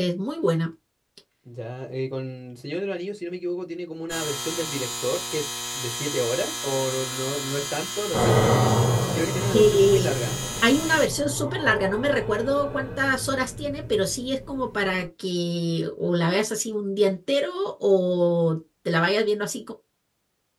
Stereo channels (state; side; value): identical; both; correlation 1.00